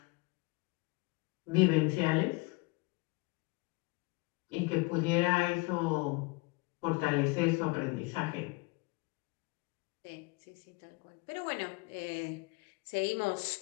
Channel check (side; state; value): right; quieter; 27.0 dB